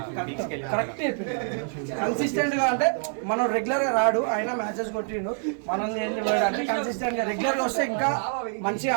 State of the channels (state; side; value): silent; left; 61 dB below the other